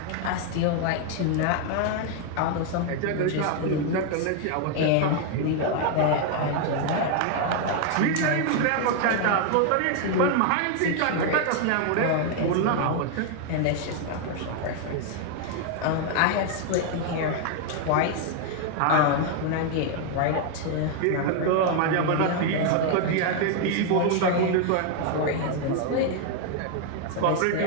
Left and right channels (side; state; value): both; different; correlation 0.00